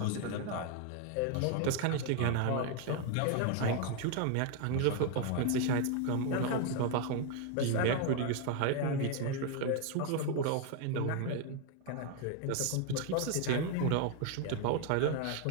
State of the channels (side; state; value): both; different; correlation 0.01